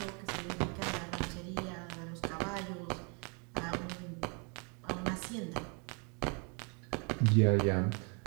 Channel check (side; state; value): left; quieter; 35.1 dB